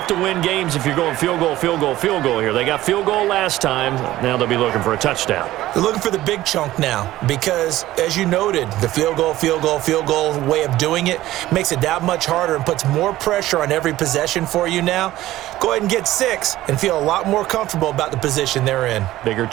to win games if you're going field goal, field goal, field goal here. They got field goal last time. Now they'll be looking for a touchdown. They're looking for the big chunk now because, as you noted, the field goal way of doing it makes it that much harder and puts more pressure on every possession for you now. Go ahead and get 6 and feel a lot more comfortable about the position they're in. Bigger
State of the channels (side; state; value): left; quieter; 15.5 dB